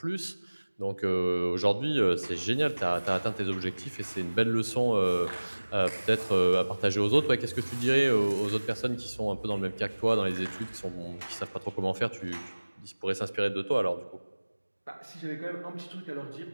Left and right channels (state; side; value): inverted; both; correlation -1.00